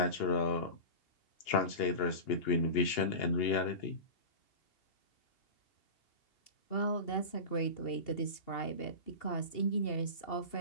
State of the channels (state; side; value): late; right; 2.8 ms